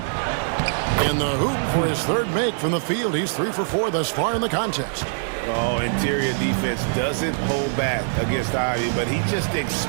In the hoop for his 3rd make from the field. He's 3 for 4 thus far in the contest. Oh, interior defense doesn't hold back against Ivy, but he just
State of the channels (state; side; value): silent; left; 58 dB below the other